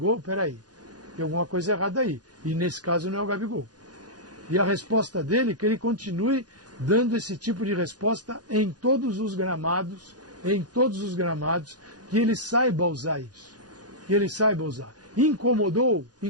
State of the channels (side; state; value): left; late; 0.69 ms